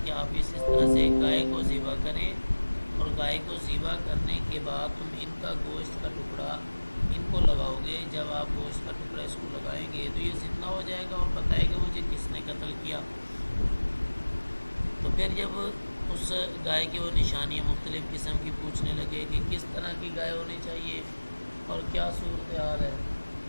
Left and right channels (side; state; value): both; inverted; correlation -1.00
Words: کہ آپ اس طرح سے گائے کو ذبح کریں، اور گائے کو ذبح کرنے کے بعد تم ان کا گوشت کا ٹکڑا ان کو لگاؤ گے۔ جب آپ گوشت کا ٹکڑا اس کو لگائیں گے تو یہ زندہ ہو جائے گا اور بتائے گا مجھے کس نے قتل کیا۔ تو پھر جب اس گائے کی وہ نشانیاں مختلف قسم کی پوچھنے لگے کہ کس طرح کی گائے ہونی چاہیے اور کیا صورتحال ہے،